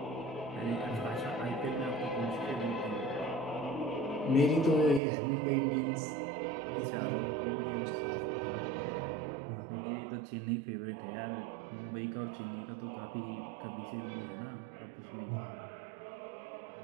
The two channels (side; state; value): left; drops out; at 5.0 s